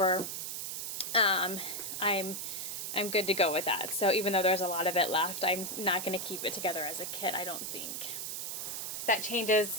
I'm good to go with that. So even though there's a lot of it left, I'm not going to keep it together as a kit, I don't think. That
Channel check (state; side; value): noise; right; hiss, 4 dB below the sound